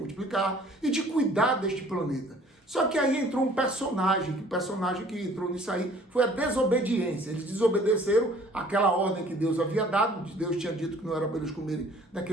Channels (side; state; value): both; normal; correlation 0.54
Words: e de cuidar deste planeta. Só que aí entrou um personagem, que o personagem que entrou nisso aí foi a desobediência. Eles desobedeceram aquela ordem que Deus havia dado. Deus tinha dito que não era para eles comerem